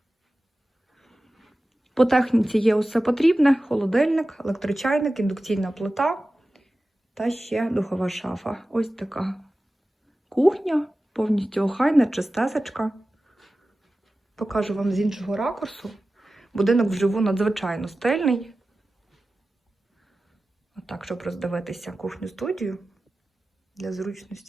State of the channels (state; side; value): normal; both; correlation 0.95